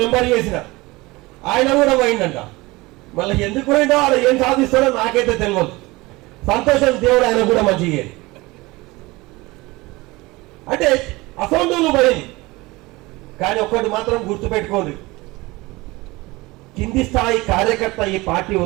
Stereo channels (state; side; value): quieter; left; 21.9 dB